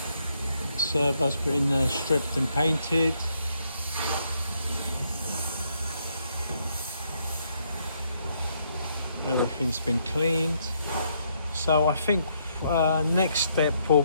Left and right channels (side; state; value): both; inverted; correlation -0.74